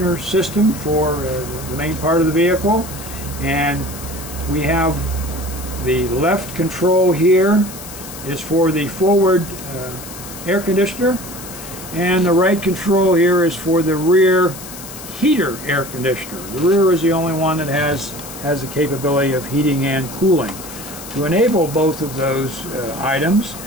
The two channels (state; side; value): noise; left; hiss, 13 dB below the sound